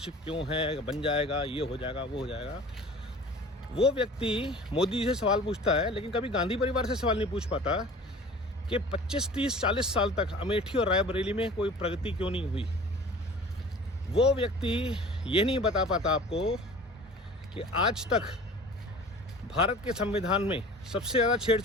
क्यों है, बन जाएगा, ये हो जाएगा, वो हो जाएगा। वो व्यक्ति मोदी जी से सवाल पूछता है, लेकिन कभी गांधी परिवार से सवाल नहीं पूछ पाता कि 25, 30, 40 साल तक अमेठी और रायबरेली में कोई प्रगति क्यों नहीं हुई। वो व्यक्ति ये नहीं बता पाता आपको कि आज तक भारत के संविधान में सबसे ज़्यादा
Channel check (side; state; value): both; normal; correlation 0.43